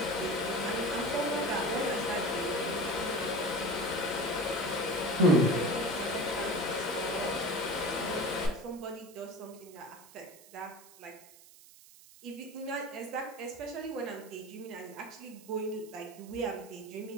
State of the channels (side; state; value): right; noise; hiss, 21 dB below the sound